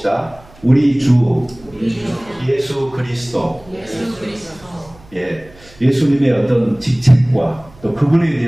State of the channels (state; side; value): noise; right; hum, 25 dB below the sound